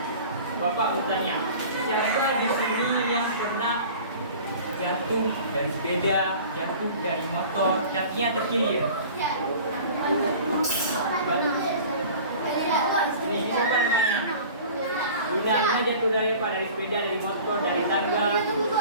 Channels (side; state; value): both; inverted; correlation -0.43